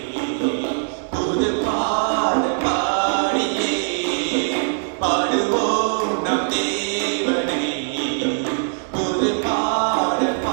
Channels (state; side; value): silent; left; 65 dB below the other